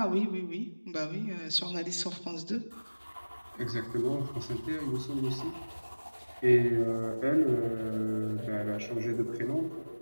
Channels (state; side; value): inverted; both; correlation -1.00